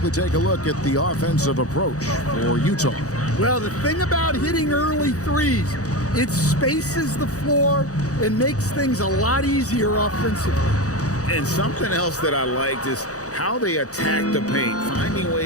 take a look at the offensive approach for Utah. Well, the thing about hitting early threes, it spaces the floor and makes things a lot easier offensively. And something else that I liked is how they attack the paint, finding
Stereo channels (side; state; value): right; late; 0.66 ms